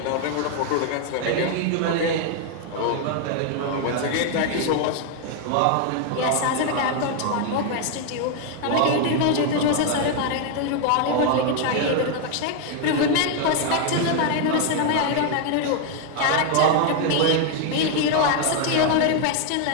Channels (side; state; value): both; different; correlation 0.00